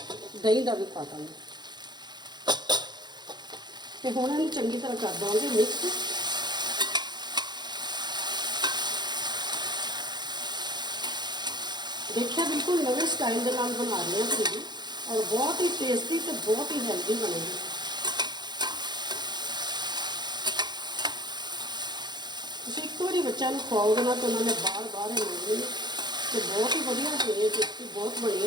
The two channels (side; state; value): left; late; 0.21 ms